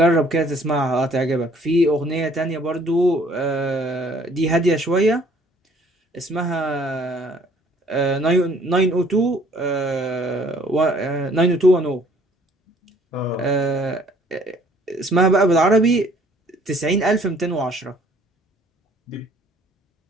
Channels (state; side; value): normal; both; correlation 0.59